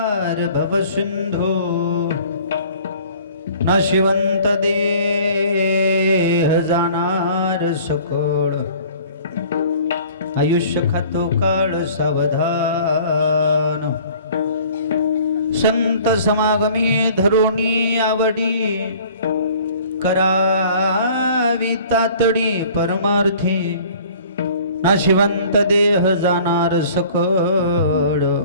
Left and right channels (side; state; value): both; inverted; correlation -0.50